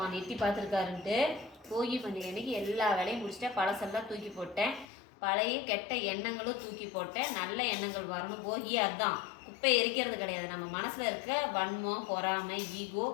எட்டி பார்த்துருக்காருன்ட்டு. போகி பண்டிகை அன்னைக்கு எல்லா வேலையும் முடிச்சிட்டேன். பழசெல்லாம் தூக்கி போட்டேன். பழைய கெட்ட எண்ணங்களும் தூக்கி போட்டேன். நல்ல எண்ணங்கள் வரணும். போகியே அதுதான், குப்பை எரிக்கிறது கிடையாது. நம்ம மனசில் இருக்க வன்மம், பொறாமை, ஈகோ,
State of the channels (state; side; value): drops out; right; at 4.9 s